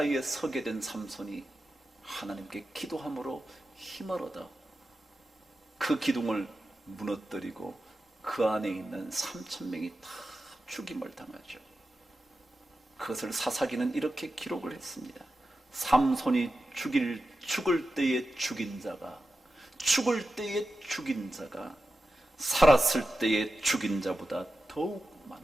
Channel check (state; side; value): normal; both; correlation 0.92